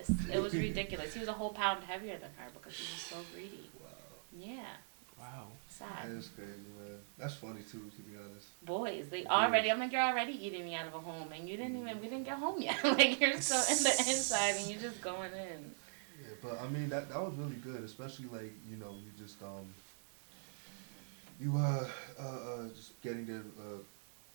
It was ridiculous. He was a whole pound heavier than her because he was so greedy. Wow. Yeah. Sad. That is crazy, man. That's funny too, to be honest. Boys, I'm like, you're already eating me out of a home, and we didn't get home yet. Like, you're still in the inside, and you're just going in. Yeah, but I mean, that was really good, especially like, you know, you just, just getting there,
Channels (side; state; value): left; silent; digital silence